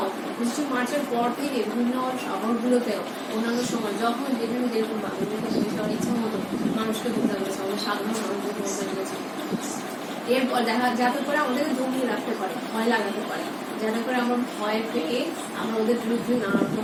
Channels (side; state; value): both; identical; correlation 1.00